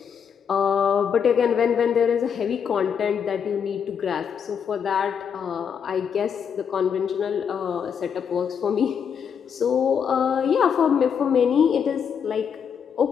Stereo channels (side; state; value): right; quieter; 7.3 dB